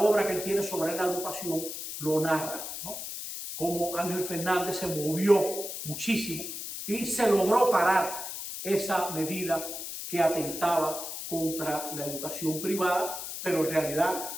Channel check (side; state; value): left; noise; hiss, 7 dB below the sound